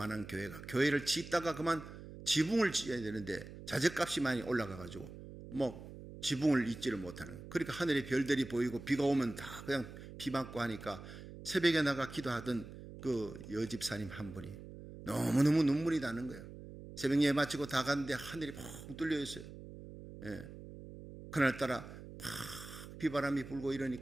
교회가 교회를 짓다가 그만 지붕을 지어야 되는데 자재값이 많이 올라가가지고 지붕을 잇지를 못하는, 그러니까 하늘에 별들이 보이고 비가 오면 다 그냥 비 맞고 하니까 새벽에 나가 기도하던 그 여집사님 한 분이 너무너무 눈물이 나는 거예요. 새벽 예배 마치고 다 갔는데 하늘이 펑 뚫려 있어요. 예. 그날따라 팍 비바람이 불고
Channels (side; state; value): right; noise; hum, 13 dB below the sound